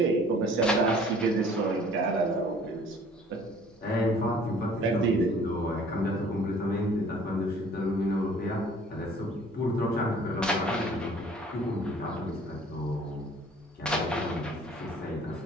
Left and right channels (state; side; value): normal; both; correlation 0.53